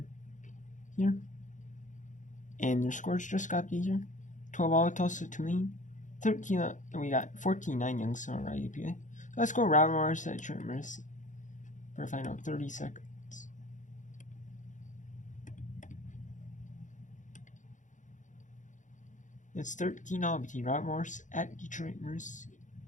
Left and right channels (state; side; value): late; right; 0.36 ms